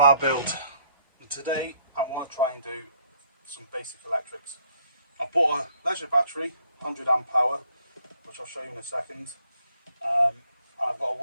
build. Today I want to try and do some basic electrics. I bought a leisure battery, 100 amp hour, which I'll show you in a second. And I've got to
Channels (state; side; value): inverted; both; correlation -0.65